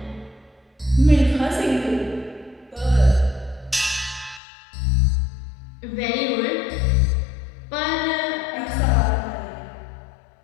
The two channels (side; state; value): right; drops out; at 4.4 s